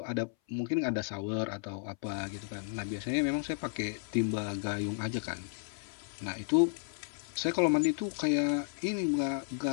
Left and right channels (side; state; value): right; silent; 56 dB below the other